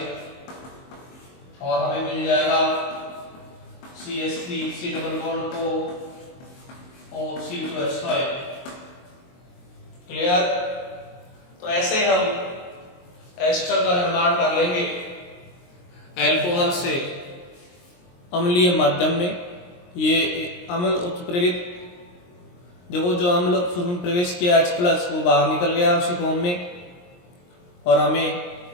और हमें मिल जाएगा CH3C++ O2CO। क्लियर? तो ऐसे हम एस्टर का निर्माण कर लेंगे अल्कोहल से अम्लीय माध्यम में। ये अम्ल उत्प्रेरित, देखो जो अम्ल में प्रवेश किया H+ वो बाहर निकल गया उसी फॉर्म में और हमें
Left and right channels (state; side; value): late; right; 23 ms